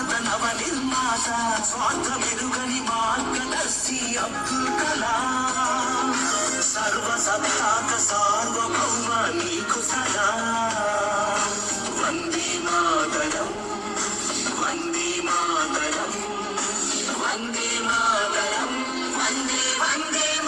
నవ నిర్మాత స్వార్థ మెరుగని మార్గదర్శి అబ్దుల్ కలాం. సర్వ సత్తాక సార్వభౌమ నీకు సలాం. వందే మాతరం వందే మాతరం వందే మాతరం వందే వందే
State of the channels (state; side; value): identical; both; correlation 1.00